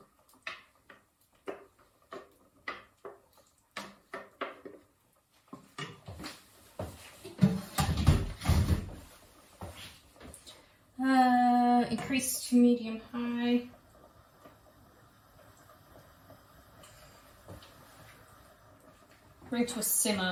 Increase to medium high. Bring to a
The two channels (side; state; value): both; identical; correlation 1.00